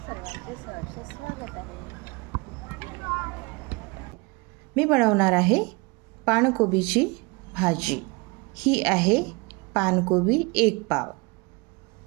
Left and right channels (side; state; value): left; quieter; 27.5 dB